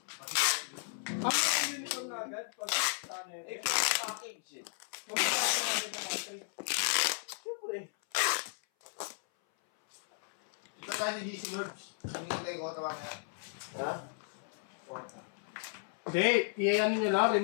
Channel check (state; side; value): silent; right; 55 dB below the other